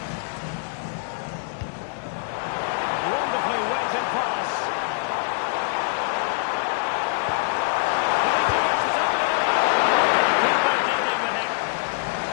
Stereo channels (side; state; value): right; silent; digital silence